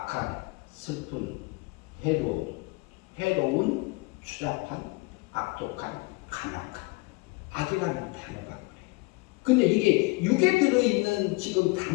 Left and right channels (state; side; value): quieter; right; 25.3 dB